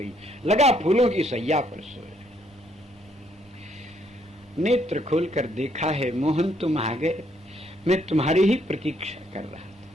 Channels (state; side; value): normal; both; correlation 0.70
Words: लगा फूलों की सैया पर सोए। नेत्र खोलकर देखा है, मोहन तुम आ गए, मैं तुम्हारी ही प्रतीक्षा कर रहा था।